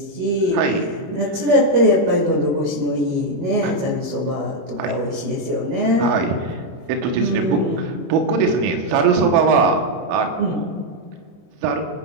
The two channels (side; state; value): left; late; 20 ms